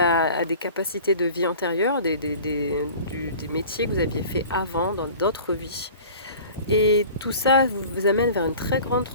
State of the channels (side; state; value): both; inverted; correlation -0.43